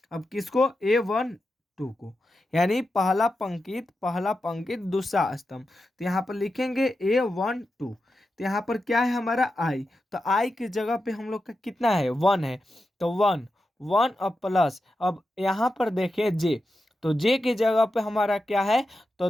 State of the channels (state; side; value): normal; both; correlation 0.89